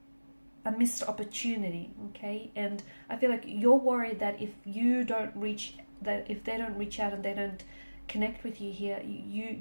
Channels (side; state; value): both; inverted; correlation -1.00